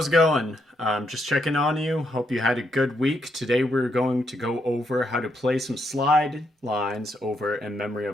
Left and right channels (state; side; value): normal; both; correlation 0.78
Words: it going? Just checking on you. Hope you had a good week. Today we're going to go over how to play some slide lines over In Memory